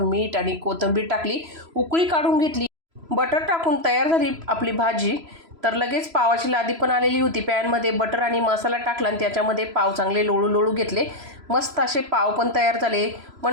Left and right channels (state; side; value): late; left; 3.0 ms